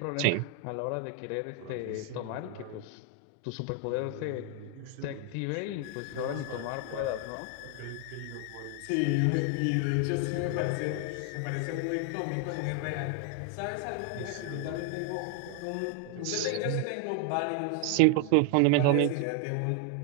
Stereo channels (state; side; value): different; both; correlation 0.00